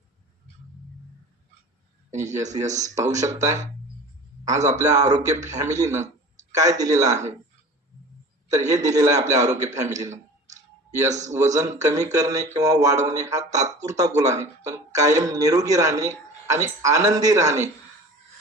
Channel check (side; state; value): both; normal; correlation 0.39